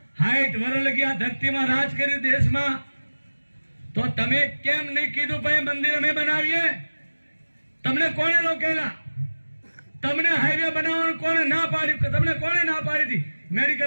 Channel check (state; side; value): inverted; both; correlation -1.00